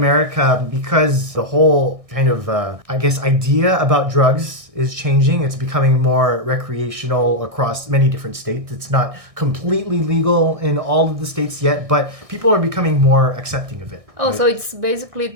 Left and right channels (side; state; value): left; late; 1.6 ms